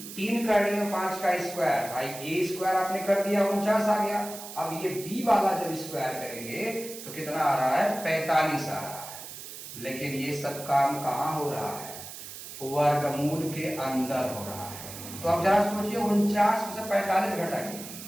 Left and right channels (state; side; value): noise; right; hiss, 12 dB below the sound